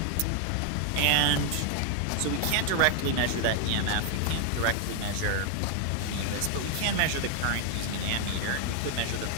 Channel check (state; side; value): different; both; correlation 0.00